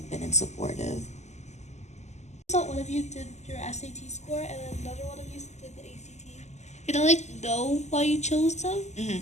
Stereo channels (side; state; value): right; late; 0.33 ms